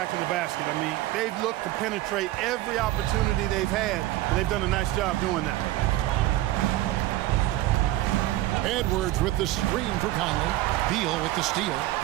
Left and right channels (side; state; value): left; quieter; 16.1 dB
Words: the basket. I mean, they've looked to penetrate every opportunity they've had, and they've done a nice job doing that. Edwards with the screen for Conley. Beal with the steal.